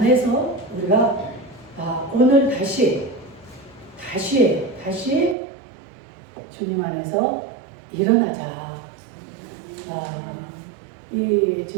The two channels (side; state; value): left; drops out; at 5.4 s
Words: 우리가 오늘 다시 주님 안에서 일어나자. 이